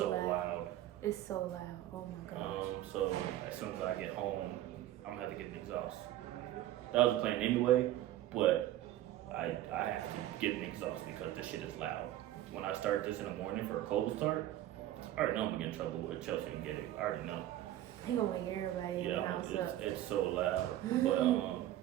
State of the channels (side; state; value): left; quieter; 13.6 dB